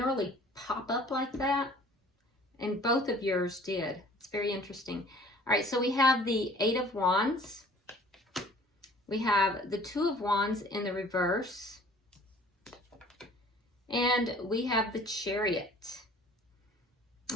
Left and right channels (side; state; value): both; normal; correlation 0.51